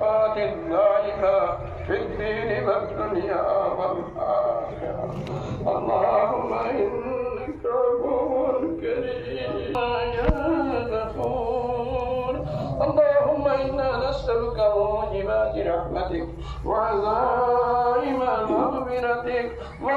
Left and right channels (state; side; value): identical; both; correlation 1.00